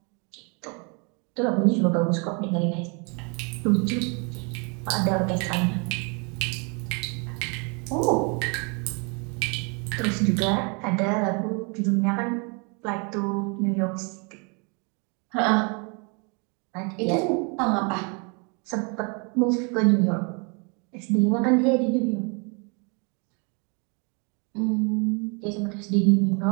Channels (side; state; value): left; quieter; 34.1 dB